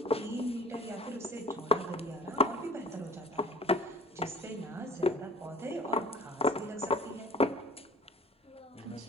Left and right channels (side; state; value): both; normal; correlation 0.47